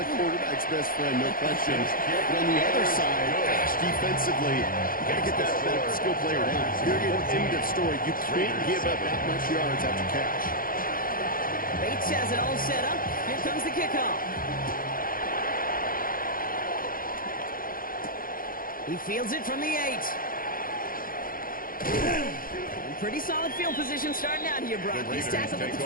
a quarterback's best friend, no question. But on the other side, gosh, defensively, you got to get that skill player down. Period, end of story. You can't give up that much yards after catch. Bates has it all set up. Here comes the kickoff. He fields it from the 8. Pretty solid field position starting out here, Brock. He's tackled at the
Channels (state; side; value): late; right; 0.41 ms